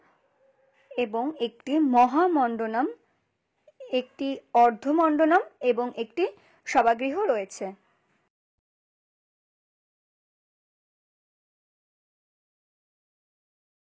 এবং একটি মহামণ্ডনম, একটি অর্ধমণ্ডনম এবং একটি সভাগৃহ রয়েছে।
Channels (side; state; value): both; identical; correlation 1.00